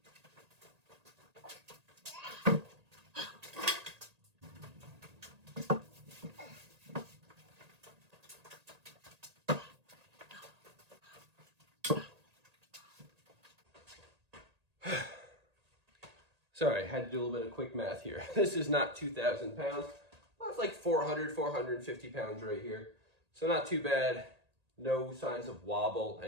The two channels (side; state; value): left; late; 1.8 ms